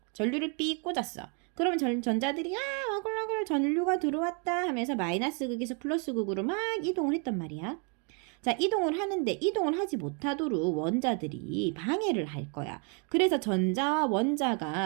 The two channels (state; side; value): quieter; left; 37.6 dB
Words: 전류를 삐 꽂았어. 그러면 전자들이 어글어글 전류가 들어왔다 하면서 마이너스 극에서 플러스 극으로 막 이동을 했단 말이야. 자, 이동을 하는데 이동을 하지 못하도록 원자들이 방해를 할 거야. 그래서 전자와